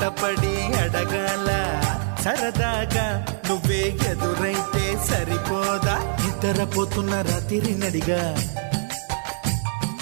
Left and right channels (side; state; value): left; silent; digital silence